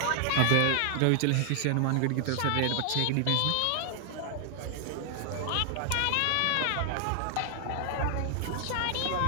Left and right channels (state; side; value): different; both; correlation 0.00